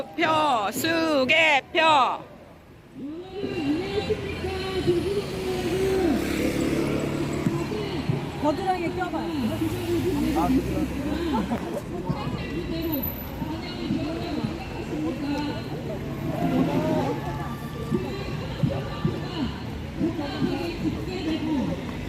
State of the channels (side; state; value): both; identical; correlation 1.00